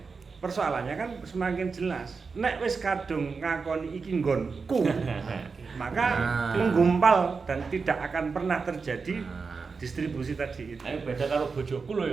persoalannya kan semakin jelas. Nek wis kadung ngakoni iki nggonku, maka menggumpal dan tidak akan pernah terjadi distribusi tadi itu. Ayo beda karo bojoku lho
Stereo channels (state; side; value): quieter; left; 4.9 dB